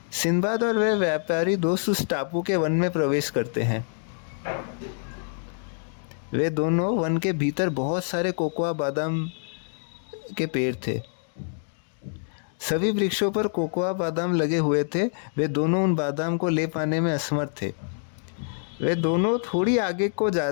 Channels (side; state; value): right; silent; digital silence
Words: सिंदबाद और वह व्यापारी दोस्त उस टापू के वन में प्रवेश करते हैं। वे दोनों वन के भीतर बहुत सारे कोकोआ बादाम के पेड़ थे। सभी वृक्षों पर कोकोआ बादाम लगे हुए थे। वे दोनों उन बादाम को ले पाने में असमर्थ थे। वे दोनों थोड़ी आगे को